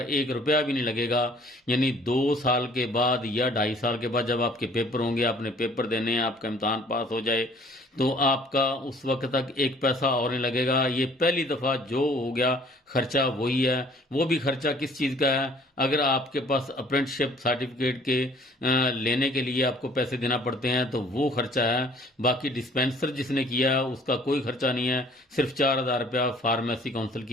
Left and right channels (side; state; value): both; normal; correlation 0.55